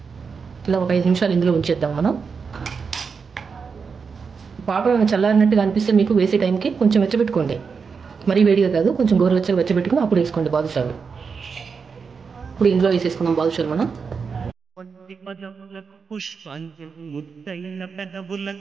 ఇలా ఒక 5 నిమిషాలు ఇందులో ఉంచేద్దాం మనం. పాకం చల్లారినట్టుగా అనిపిస్తే మీకు వేసే టైంకి కొంచెం వెచ్చబెట్టుకోండి. మరీ వేడిగా కాదు, కొంచెం గోరువెచ్చగా వెచ్చబెట్టుకుని అప్పుడు వేసుకోండి బాదుషాలు. ఇప్పుడు ఇందులో వేసేసుకున్నాం బాదుషాలు మనం.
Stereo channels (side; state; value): left; quieter; 5.5 dB